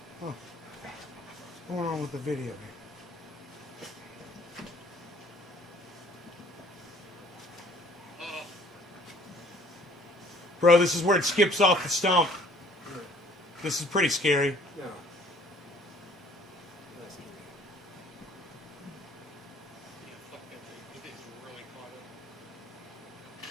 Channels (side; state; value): both; normal; correlation 0.56